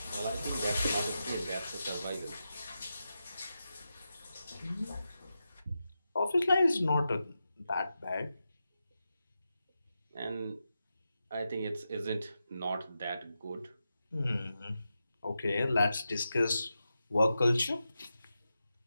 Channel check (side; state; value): both; inverted; correlation -0.89